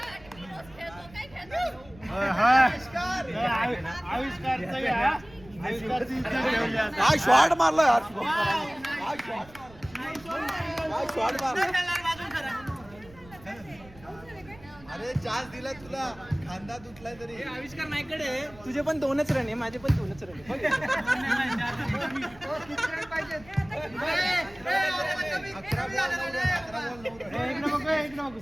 आविष्कारचा काय शॉट मारला यार. काय शॉट मारला. अरे चान्स दिला तुला. खांदा तुटलाय तरी. आविष्कार नाहीकडे तुझे पण 2च रन आहे. माझे पण 2च रन आहे.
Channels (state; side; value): noise; right; rumble, 22 dB below the sound